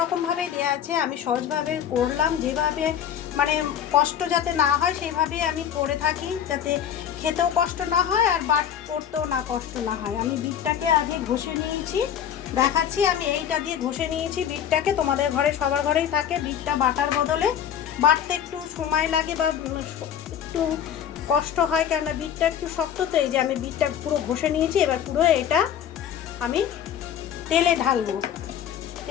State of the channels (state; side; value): quieter; right; 9.4 dB